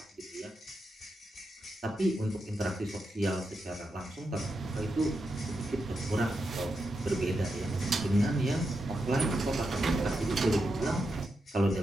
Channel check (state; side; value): normal; both; correlation 0.86